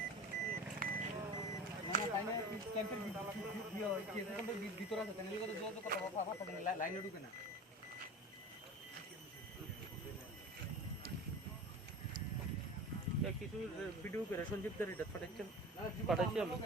ক্যাম্পের ভিতরে আছে লাইনে ঢুকে না কিছু ভিডিও করে সঞ্জীব এটা পাঠাচ্ছি আমি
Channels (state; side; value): normal; both; correlation 0.34